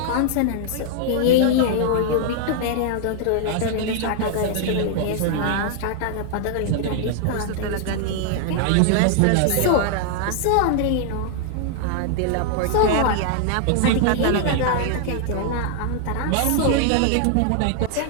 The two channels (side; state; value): both; different; correlation 0.00